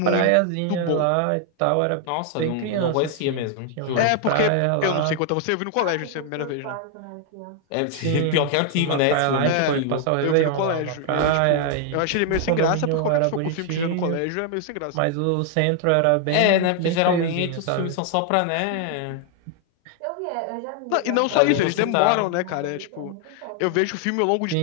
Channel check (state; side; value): different; both; correlation 0.00